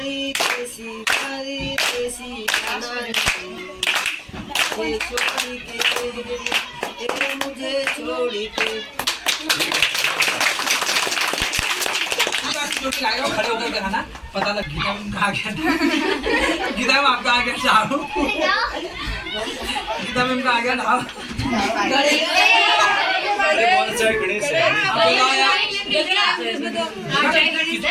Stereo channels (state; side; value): identical; both; correlation 1.00